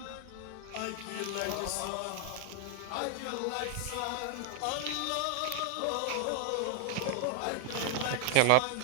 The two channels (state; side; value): different; both; correlation 0.00